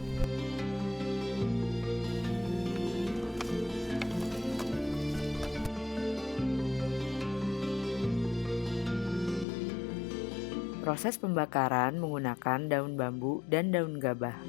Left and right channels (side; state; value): right; drops out; at 9.5 s